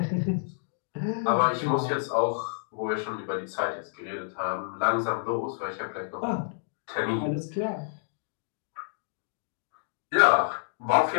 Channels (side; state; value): right; silent; digital silence